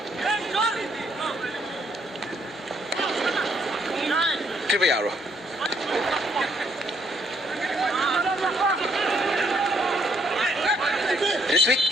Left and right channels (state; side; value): normal; both; correlation 0.69